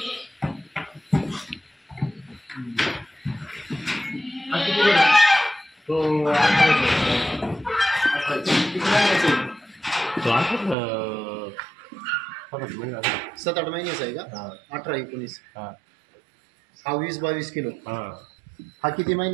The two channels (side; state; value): left; drops out; at 10.8 s